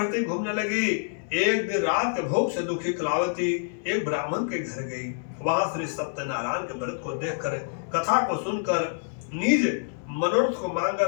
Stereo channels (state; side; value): silent; right; 60 dB below the other